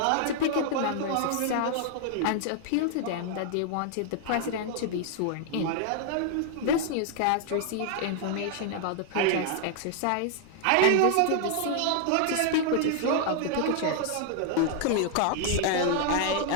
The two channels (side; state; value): both; different; correlation 0.00